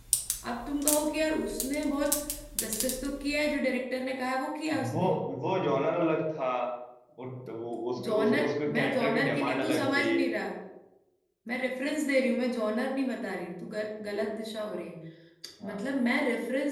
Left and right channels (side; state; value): both; identical; correlation 1.00